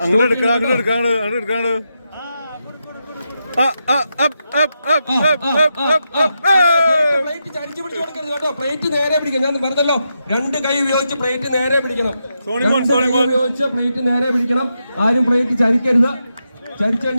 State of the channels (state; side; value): inverted; both; correlation -0.85